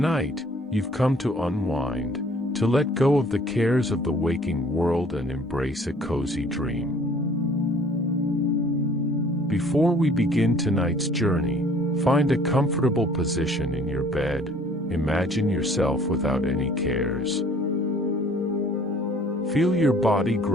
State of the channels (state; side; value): normal; both; correlation 0.55